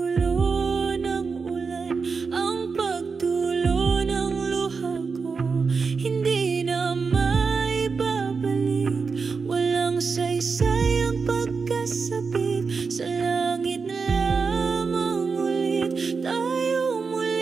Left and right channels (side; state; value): left; quieter; 5.0 dB